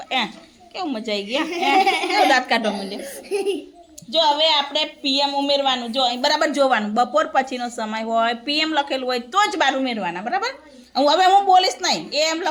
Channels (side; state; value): both; identical; correlation 1.00